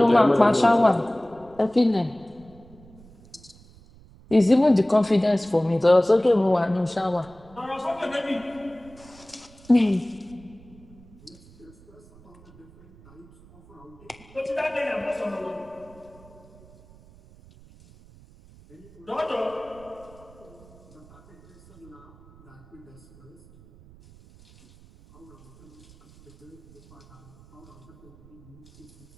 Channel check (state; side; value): noise; right; rumble, 24 dB below the sound